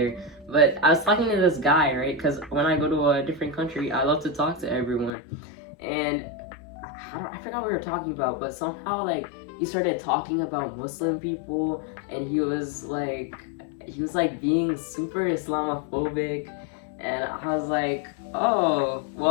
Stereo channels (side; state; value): right; drops out; at 5.1 s